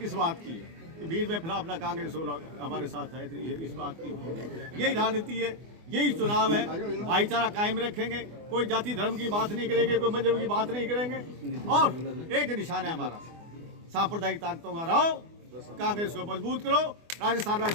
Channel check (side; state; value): left; late; 24 ms